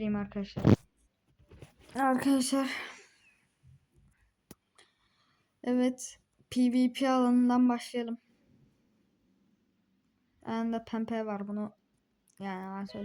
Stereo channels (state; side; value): identical; both; correlation 1.00